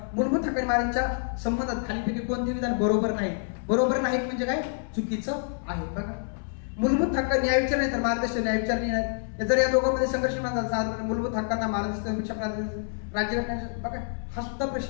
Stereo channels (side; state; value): right; silent; 60 dB below the other